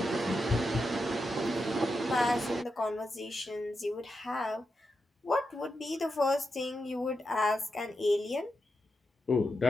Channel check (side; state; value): both; normal; correlation 0.87